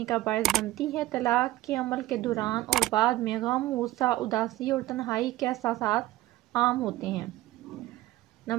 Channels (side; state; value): left; quieter; 16.3 dB